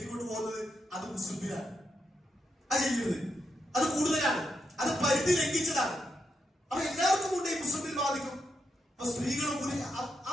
പോകുന്നത്, അത് മുസ്ലിമിലാണ്. അത് ചെയ്യരുത്, അത് കൂടുതലാണ്, അത് പരിധി ലംഘിച്ചതാണ്. അപ്പൊ എല്ലാവർക്കും കൊണ്ട് ഈ മുസ്ലിമിൽ ബാധിക്കും. അപ്പൊ സ്ത്രീകളും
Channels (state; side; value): normal; both; correlation 0.83